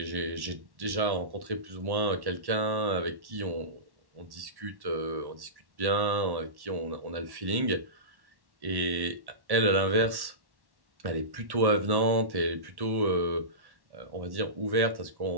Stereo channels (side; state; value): left; late; 1.1 ms